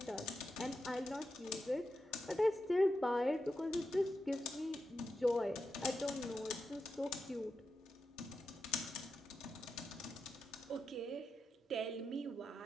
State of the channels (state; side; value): normal; both; correlation 0.88